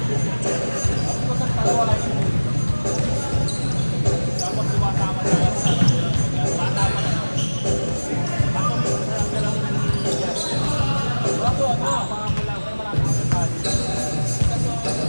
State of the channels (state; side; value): inverted; both; correlation -1.00